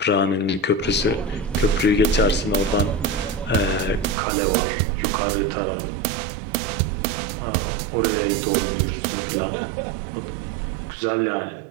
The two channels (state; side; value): drops out; left; at 4.2 s